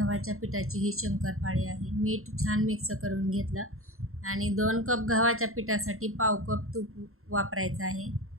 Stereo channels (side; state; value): left; late; 0.62 ms